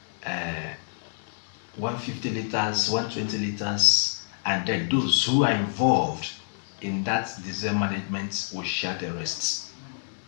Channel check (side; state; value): right; silent; digital silence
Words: 150 liters, 120 liters, and then those who are involved in that diesel management will share the rest.